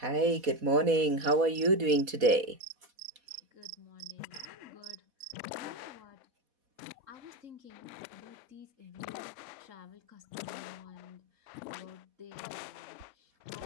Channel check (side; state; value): left; late; 4.1 ms